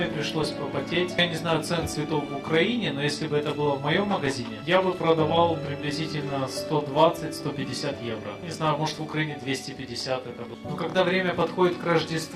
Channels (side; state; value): both; identical; correlation 1.00